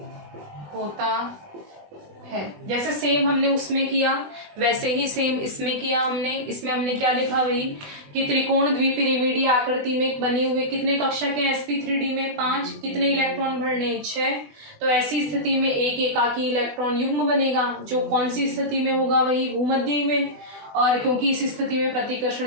होता है। जैसे सेम हमने उसमें किया वैसे ही सेम इसमें किया हमने। इसमें हमने क्या लिखा? वही कि त्रिकोण द्विपिरामिडीय आकृति में बने हुए कितने कक्षक हैं sp3d में? 5। कितने इलेक्ट्रॉन भरने? 6। तो ऐसी स्थिति में एक एकाकी इलेक्ट्रॉन युग्म बनेगा जो कौन सी स्थिति में होगा? वही भूमध्य में। और क्योंकि इस स्थिति में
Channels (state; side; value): late; left; 20 ms